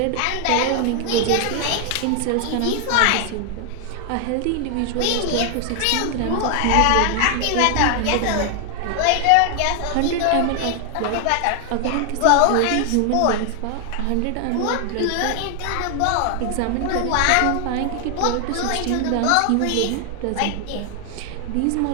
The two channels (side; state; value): both; different; correlation 0.00